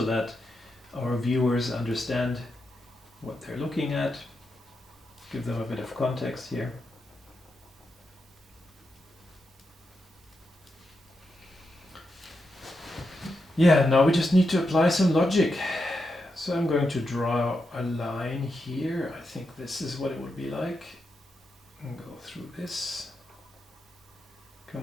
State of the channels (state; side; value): normal; both; correlation 0.86